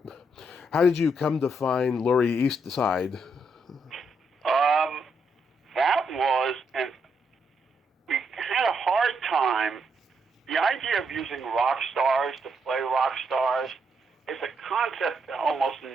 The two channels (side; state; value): both; normal; correlation 0.77